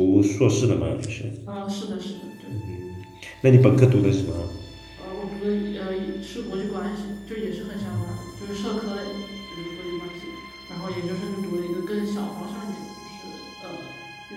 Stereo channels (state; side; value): identical; both; correlation 1.00